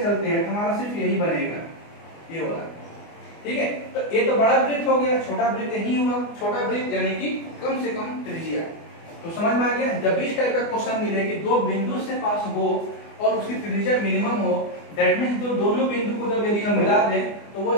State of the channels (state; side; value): late; right; 24 ms